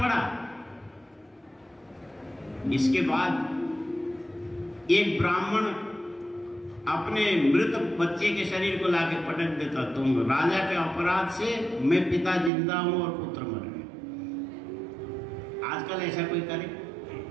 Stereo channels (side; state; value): left; drops out; at 12.5 s